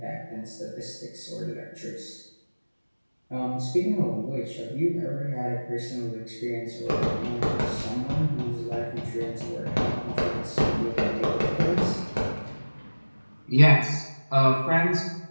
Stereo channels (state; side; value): inverted; both; correlation -1.00